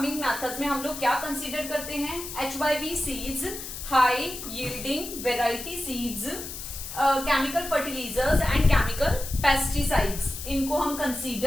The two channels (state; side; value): noise; left; hiss, 9 dB below the sound